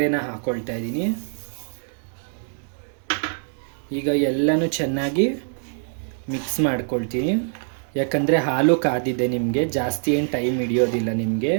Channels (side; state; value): left; silent; 63 dB below the other